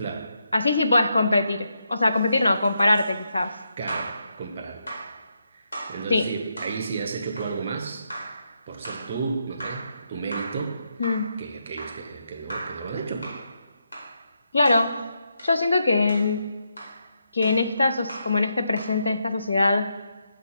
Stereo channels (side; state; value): both; inverted; correlation -0.81